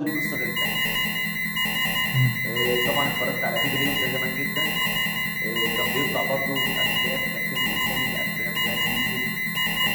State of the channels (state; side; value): identical; both; correlation 1.00